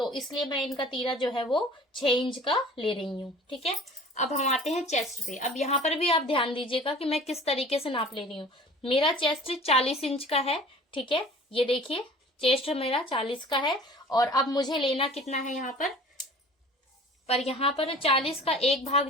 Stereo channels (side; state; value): both; normal; correlation 0.46